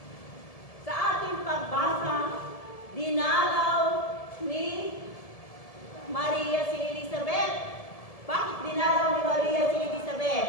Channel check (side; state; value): right; late; 1.7 ms